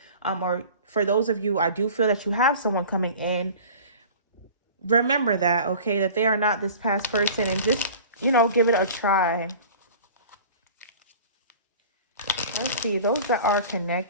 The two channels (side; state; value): both; inverted; correlation -0.42